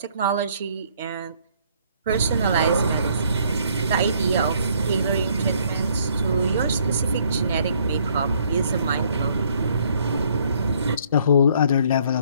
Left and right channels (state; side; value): inverted; both; correlation -0.64